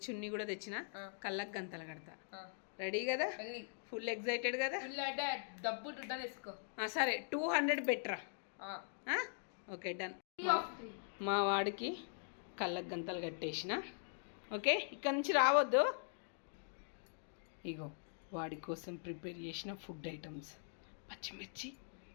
చున్నీ కూడా తెచ్చిన, కళ్ళకు గంతలు కడతా. రెడీ కదా? ఫుల్ ఎక్సైటెడ్ కదా? సరే, 200 బెటరా? Okay, done. మా వాడికి కళ్ళకు గంతలు కట్టేసిన. ఓకే, ఇక్కడ నుంచి రావద్దు. ఇగో వాడి కోసం ప్రిపేర్ చేసిన ఫుడ్ ఐటమ్స్: పచ్చిమిర్చి,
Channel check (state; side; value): silent; right; digital silence